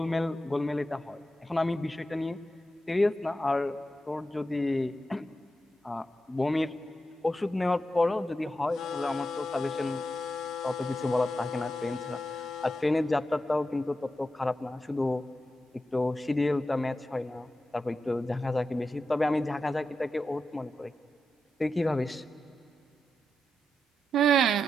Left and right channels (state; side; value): normal; both; correlation 0.88